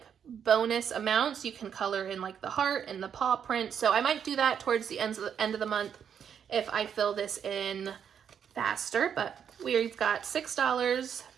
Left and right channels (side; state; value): left; quieter; 8.1 dB